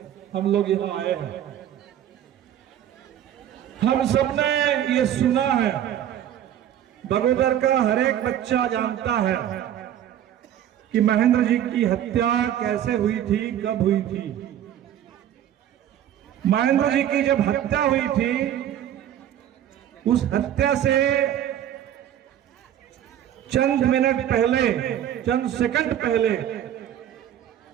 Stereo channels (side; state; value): left; quieter; 10.9 dB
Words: हम लोग यहाँ आए हैं। हम सबने ये सुना है, बगोदर का हर एक बच्चा जानता है कि महेंद्र जी की हत्या कैसे हुई थी, कब हुई थी। महेंद्र जी की जब हत्या हुई थी, उस हत्या से चंद मिनट पहले, चंद सेकंड पहले